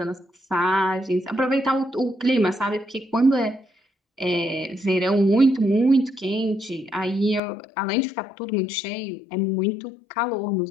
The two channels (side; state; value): right; drops out; at 7.4 s